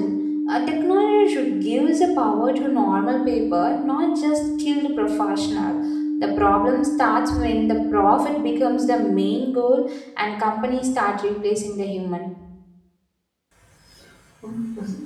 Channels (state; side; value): identical; both; correlation 1.00